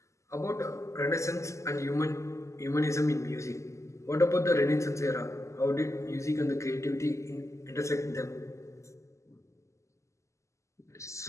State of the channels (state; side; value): late; right; 0.14 ms